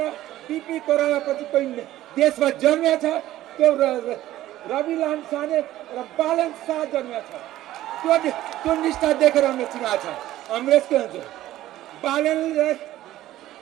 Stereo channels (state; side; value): quieter; left; 14.5 dB